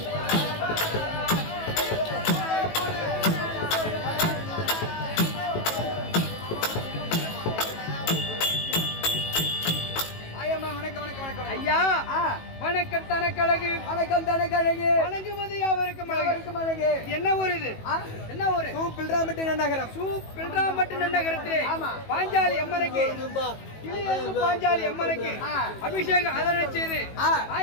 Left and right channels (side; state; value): right; late; 18 ms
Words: வணக்கம் தனக்கழகு வணக்கம் தனக்கழகு வணங்குவது யாவருக்கும் அழகு என்ன ஊர் இது என்ன ஊர் பில்ராம்பட்டு நன்னகரம் பில்ராம்பட்டு நன்னகரத்திலே பாஞ்சாலி அம்மனுக்கு பாஞ்சாலி அம்மனுக்கு அபிஷேகம் அதனை செய்து